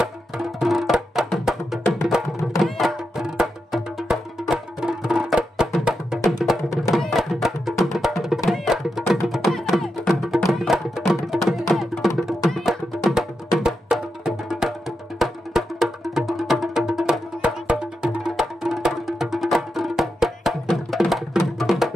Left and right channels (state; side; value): normal; both; correlation 0.87